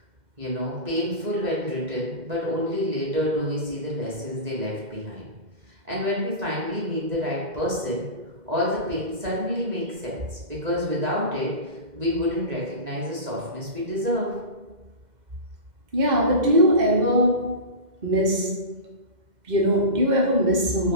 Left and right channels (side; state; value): left; late; 2.0 ms